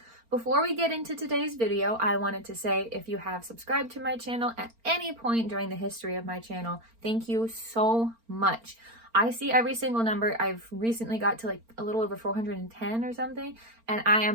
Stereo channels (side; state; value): left; late; 4.4 ms